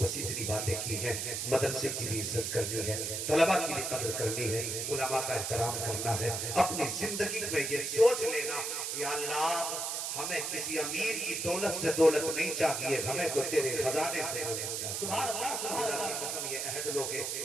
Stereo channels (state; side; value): noise; right; hiss, 2 dB below the sound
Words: بس اتنی باتیں کی ہیں. مدرسے کی بھی عزت کرنی ہے. طلبہ کی بھی قدر کرنی ہے. علماء کا احترام کرنا ہے. اپنی زندگی میں یہ سوچ لینا یا اللہ ہمیں کسی امیر کی دولت سے دولت نہیں چاہیے ہمیں تو تیرے خزانے سے دولت چاہیے. سبحان اللہ سبحان خدا اللہ. کی قسم یہ عہد لو گے